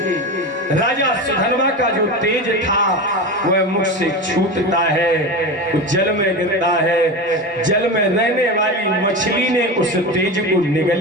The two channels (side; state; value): both; normal; correlation 0.24